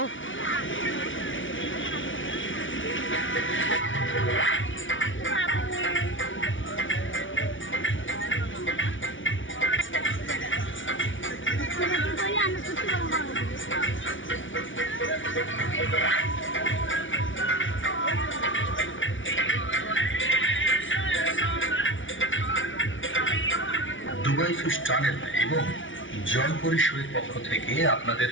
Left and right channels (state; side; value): late; right; 0.56 ms